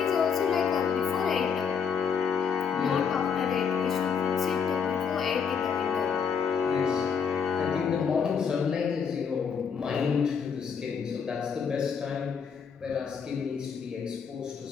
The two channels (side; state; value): right; quieter; 6.6 dB